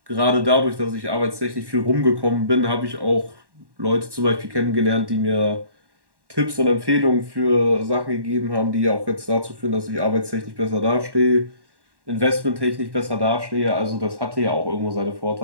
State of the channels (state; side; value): late; left; 1.1 ms